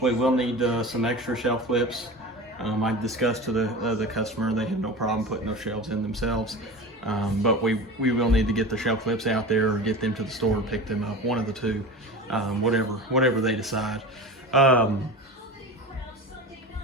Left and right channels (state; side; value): normal; both; correlation 0.31